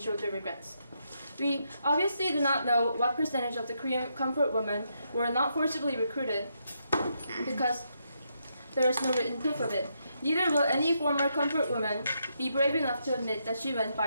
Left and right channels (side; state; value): both; inverted; correlation -0.80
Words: showed their regrets. We obviously do not know what percentage of the Korean comfort women were not forcibly recruited because there is no written proof of it. Neither will any former comfort woman be brave enough to admit that she went